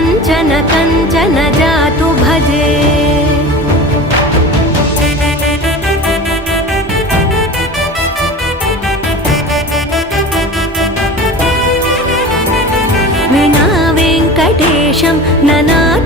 कञ्चन जातु भजे विना वेङ्कटेशं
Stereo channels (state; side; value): normal; both; correlation 0.34